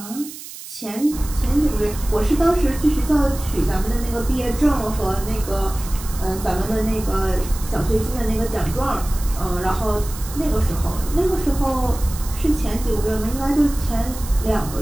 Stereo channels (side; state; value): right; noise; hiss, 13 dB below the sound